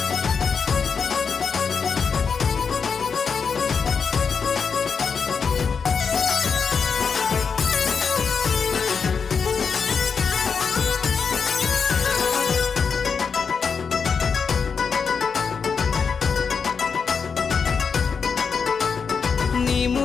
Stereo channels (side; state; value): right; quieter; 5.8 dB